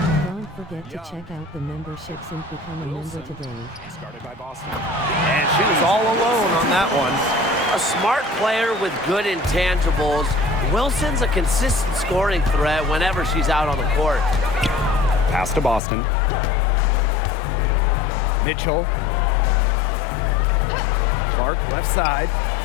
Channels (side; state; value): right; drops out; at 15.8 s